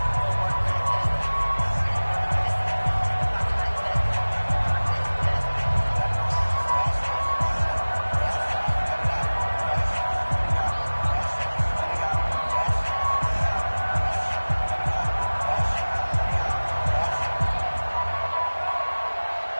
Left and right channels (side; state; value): both; inverted; correlation -1.00